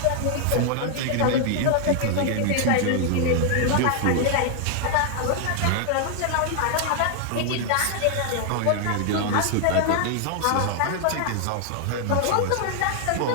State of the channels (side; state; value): both; different; correlation 0.00